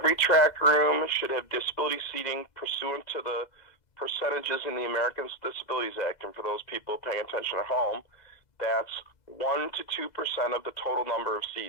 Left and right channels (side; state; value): right; late; 2.0 ms